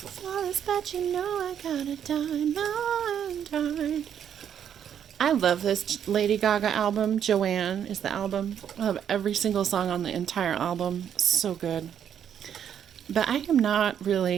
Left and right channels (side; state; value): left; quieter; 9.0 dB